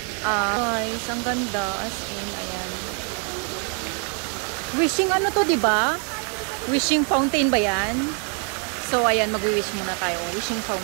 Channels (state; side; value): quieter; left; 39.7 dB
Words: guys, ang ganda, as in, ayan. Wishing to, di ba? Wishing fountain ba yan? So, ayan, mag-wish muna tayo. Wishing